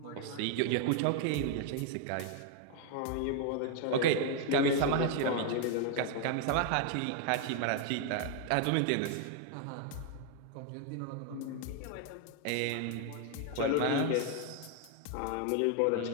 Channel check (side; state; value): both; different; correlation 0.00